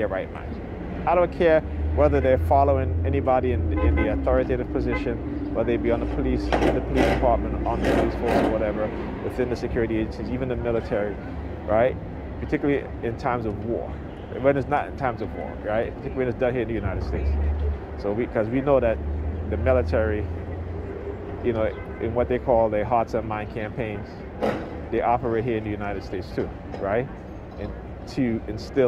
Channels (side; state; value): both; identical; correlation 1.00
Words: right mind. I don't care whether they're following anybody in the authoritative position, whether they be on the police, in the police department, on the police force or whatever, within the security agencies, even the military, right? Particularly in times of war. When it's not in times of war, right? Particularly when it's done here in the United States. So because we know that the military, you know, in what they call their hearts and mind campaigns, they operate here in the United States too, right? And to